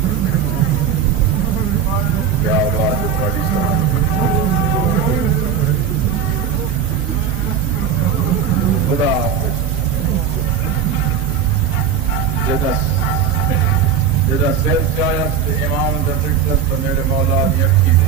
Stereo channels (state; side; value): quieter; left; 7.5 dB